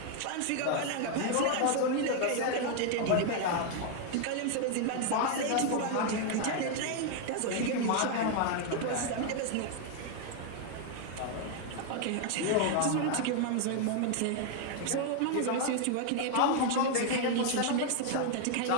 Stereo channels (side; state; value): both; different; correlation 0.00